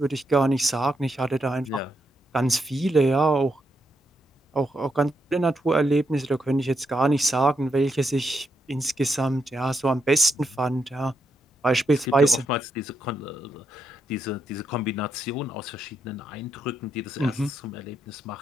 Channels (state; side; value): normal; both; correlation 0.81